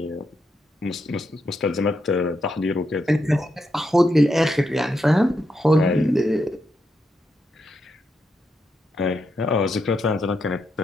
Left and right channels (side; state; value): both; normal; correlation 0.82